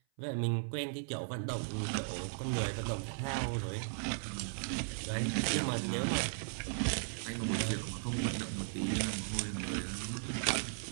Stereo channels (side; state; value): left; silent; 53 dB below the other